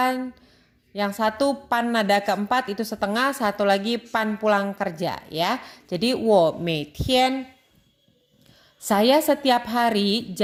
Yang satu pan nada keempat itu setengah, satu lagi pan pulang kerja ya. Jadi 我每天 saya setiap hari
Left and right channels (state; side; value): identical; both; correlation 1.00